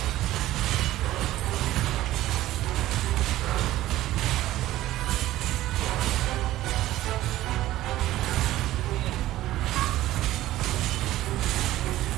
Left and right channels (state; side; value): quieter; left; 15.2 dB